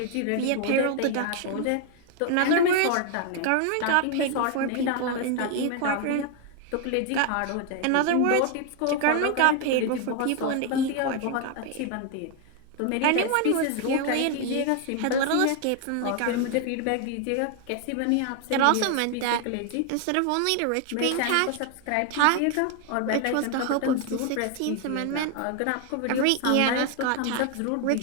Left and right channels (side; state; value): both; different; correlation 0.00